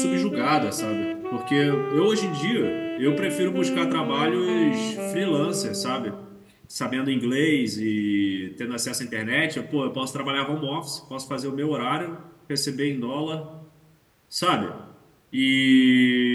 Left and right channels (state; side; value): identical; both; correlation 1.00